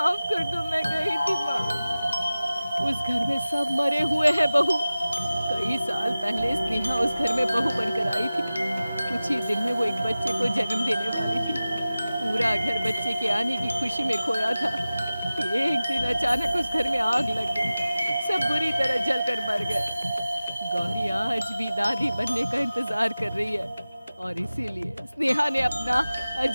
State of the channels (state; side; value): inverted; both; correlation -0.96